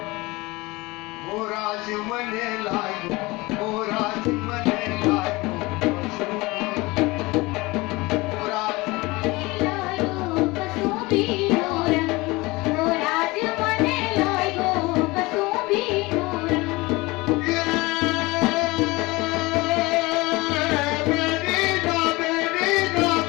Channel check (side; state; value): right; quieter; 22.6 dB